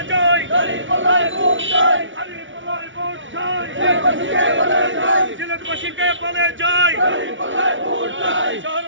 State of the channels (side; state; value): left; late; 0.56 ms